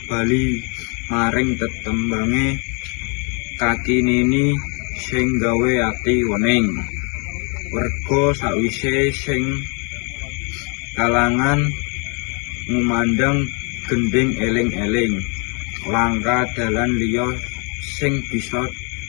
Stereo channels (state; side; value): quieter; right; 35.3 dB